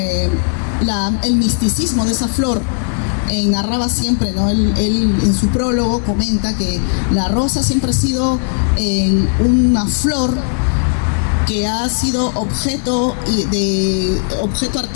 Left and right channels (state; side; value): silent; right; 69 dB below the other